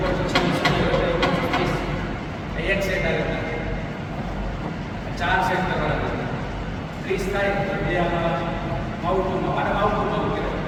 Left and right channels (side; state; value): both; identical; correlation 1.00